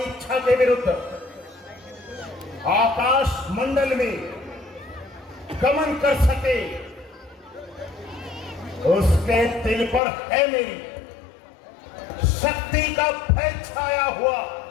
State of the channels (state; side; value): drops out; right; at 10.0 s